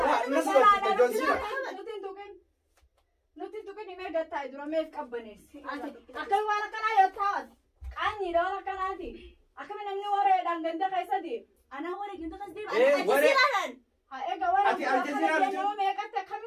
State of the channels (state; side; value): identical; both; correlation 1.00